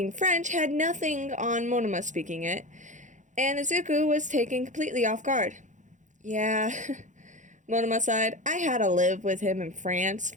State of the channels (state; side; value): late; left; 0.36 ms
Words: French had nothing on Monoma speaking it, and Izuku was taken completely off guard. Yeah, Monoma sighed. I had to live with him in France